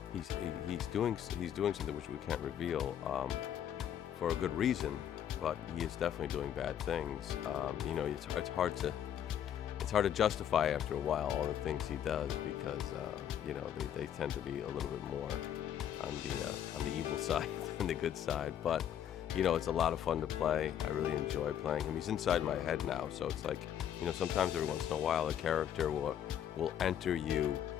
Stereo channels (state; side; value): quieter; right; 9.8 dB